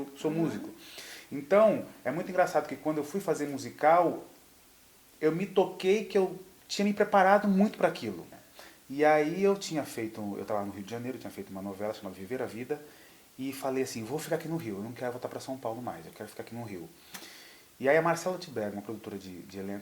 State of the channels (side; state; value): both; identical; correlation 1.00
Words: sou músico. Então, é muito engraçado que quando eu fui fazer musical, eu me toquei que eu tinha me preparado muito para aquilo. E aí eu estava no Rio de Janeiro, eu tinha feito uma novela chamada Viver a Vida, e falei assim, vou ficar aqui no Rio, eu não quero voltar para São Paulo mais, eu quero ficar aqui no Rio. E aí a Marcela Tiberg, uma produtora de